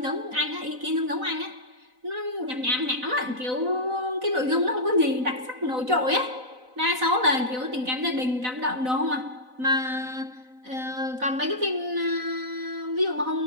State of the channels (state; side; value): late; left; 4.0 ms